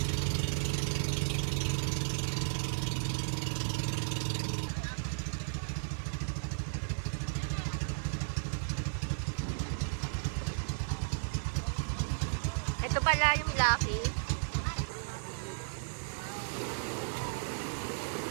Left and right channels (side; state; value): left; silent; 55 dB below the other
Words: Ito pala yung Lucky.